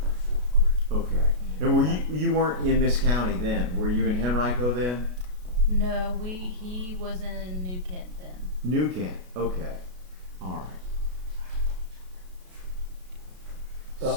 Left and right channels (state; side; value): late; left; 33 ms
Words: or fourth grade. Okay. And were you weren't in this county then? Were you in Henrico then? No, he was in New Kent then. New Kent. Okay. All right.